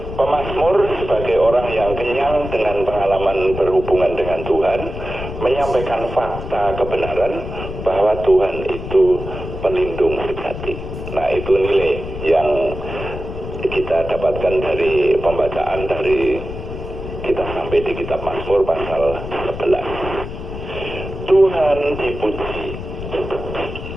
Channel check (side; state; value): left; noise; rumble, 8 dB below the sound